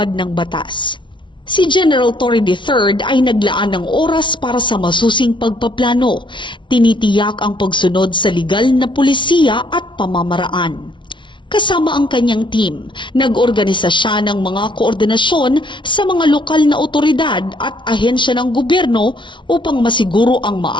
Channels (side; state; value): right; late; 0.24 ms